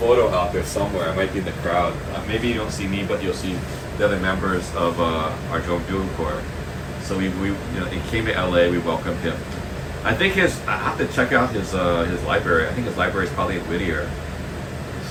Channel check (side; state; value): both; identical; correlation 1.00